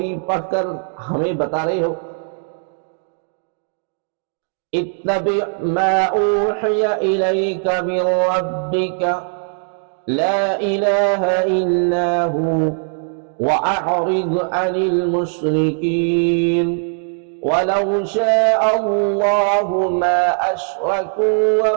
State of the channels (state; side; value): silent; left; 66 dB below the other